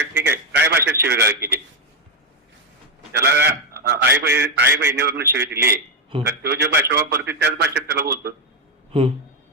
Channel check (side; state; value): both; normal; correlation 0.05